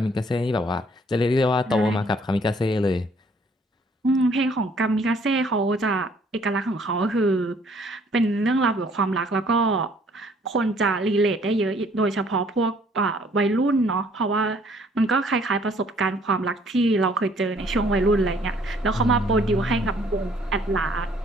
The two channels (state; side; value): normal; both; correlation 0.61